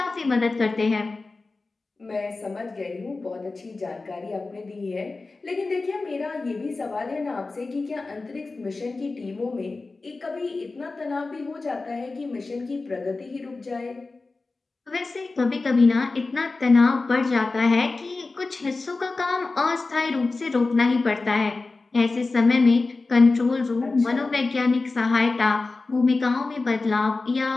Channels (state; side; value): quieter; right; 3.6 dB